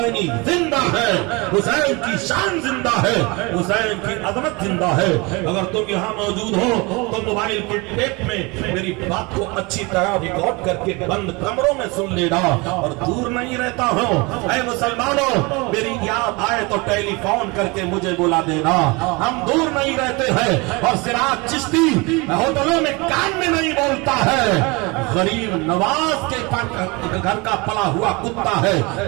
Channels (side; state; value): left; quieter; 26.4 dB